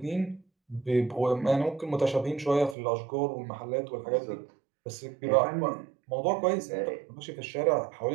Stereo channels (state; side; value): drops out; left; at 2.8 s